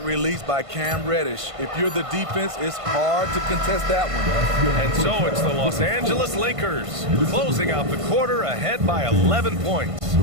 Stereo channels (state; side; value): late; left; 1.5 ms